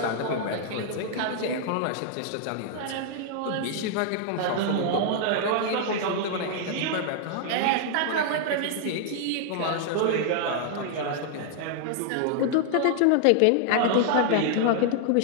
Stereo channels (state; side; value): different; both; correlation 0.00